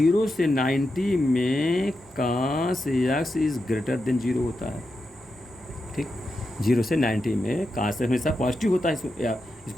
से 90 में कास एक्स इज ग्रेटर देन 0 होता है, ठीक। 0 से 90 में कास हमेशा पॉजिटिव होता है,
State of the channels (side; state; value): right; noise; hum, 27 dB below the sound